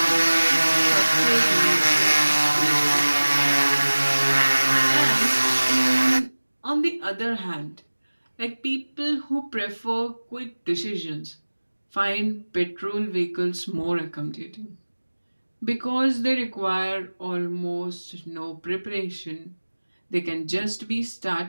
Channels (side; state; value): both; inverted; correlation -1.00